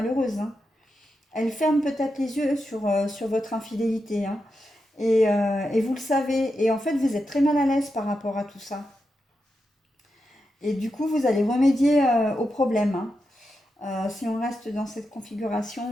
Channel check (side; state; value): both; normal; correlation 0.87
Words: hein. Elle ferme peut-être les yeux sur votre infidélité, hein. Et vous le savez. Et en fait, vous êtes très mal à l'aise par rapport à tout ça. Et du coup, vous allez remédier au problème, hein. Si on reste dans cette configuration